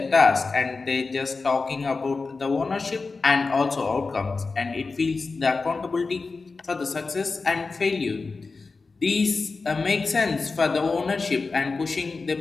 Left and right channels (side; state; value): right; quieter; 4.1 dB